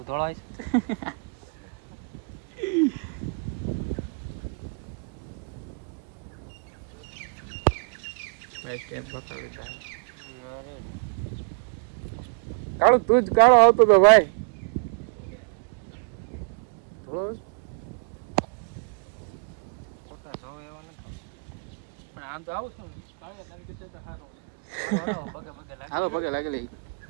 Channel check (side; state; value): left; quieter; 37.0 dB